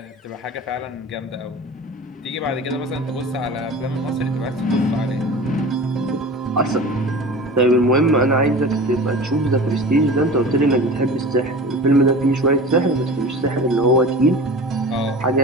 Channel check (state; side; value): normal; both; correlation 0.36